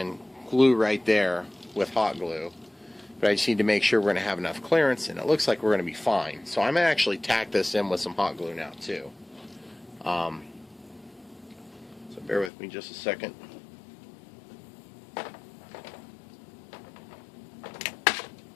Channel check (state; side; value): drops out; right; at 12.5 s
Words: glue right there with hot glue, but I just need to make sure we're going to have enough clearance, and it looks like we're going to be fine. So I'm going to actually tack this in with some hot glue now too. So bear with me just a second.